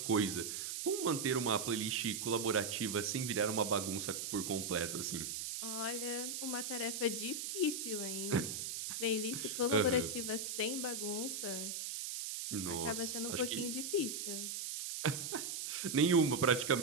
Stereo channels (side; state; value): right; noise; hiss, 4 dB below the sound